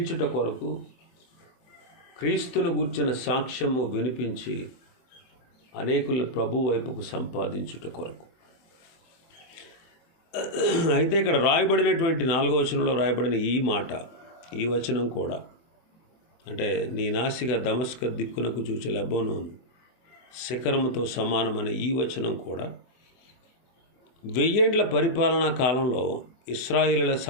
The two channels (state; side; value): late; right; 24 ms